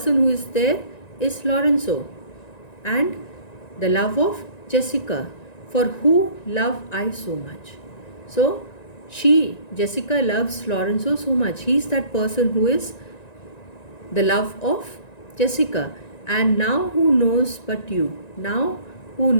who is there is Lorenzo and the love of Jessica, for who love I so much. So Jessica loves Lorenzo so much. He is that person who is the love of Jessica. And now who knows but you? Now who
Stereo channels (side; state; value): right; late; 1.9 ms